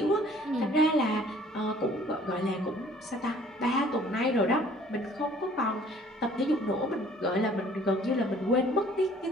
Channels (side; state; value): both; normal; correlation 0.55